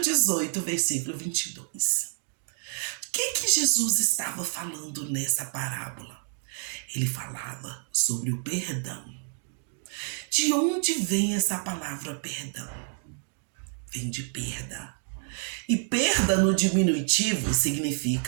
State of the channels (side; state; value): left; silent; 56 dB below the other